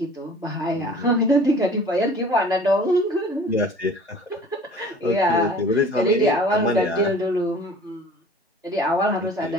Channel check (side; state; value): both; normal; correlation 0.47